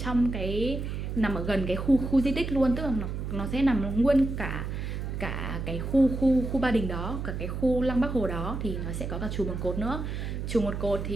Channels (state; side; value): noise; right; hum, 4 dB below the sound